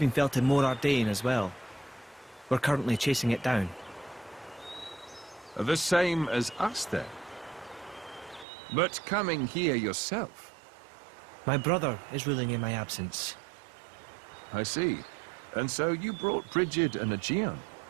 felt in Mor Ardain as well. We're currently chasing it down. The same as us, then. But coming here yourself. My brother is ruling in my absence. I see. And so you brought Brigid and Aegeon.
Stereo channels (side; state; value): left; drops out; at 8.5 s